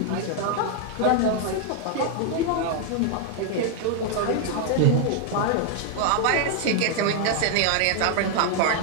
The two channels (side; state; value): both; different; correlation 0.00